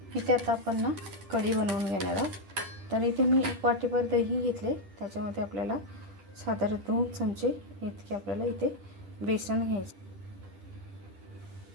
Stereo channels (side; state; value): left; late; 10 ms